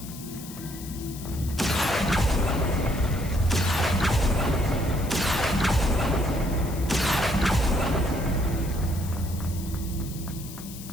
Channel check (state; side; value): noise; left; hiss, 14 dB below the sound